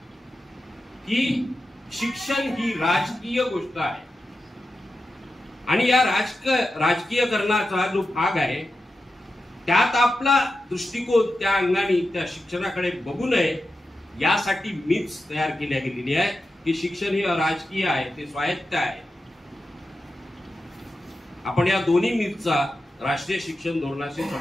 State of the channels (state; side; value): normal; both; correlation 0.91